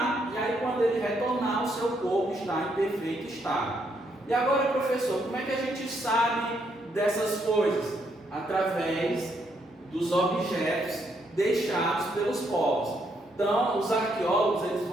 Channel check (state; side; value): normal; both; correlation 0.75